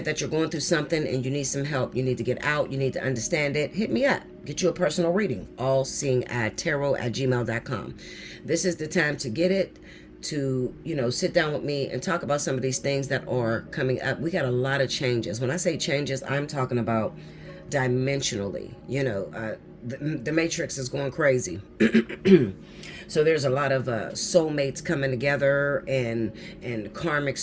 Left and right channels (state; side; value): identical; both; correlation 1.00